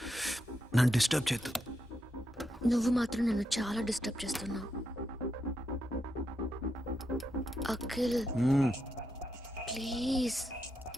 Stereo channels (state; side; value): normal; both; correlation 0.84